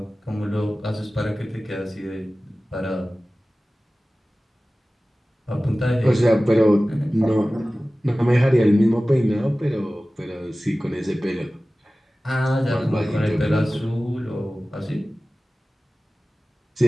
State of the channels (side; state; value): both; normal; correlation 0.97